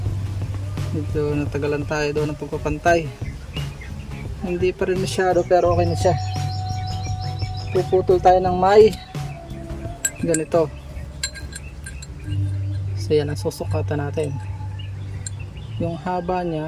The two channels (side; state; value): both; identical; correlation 1.00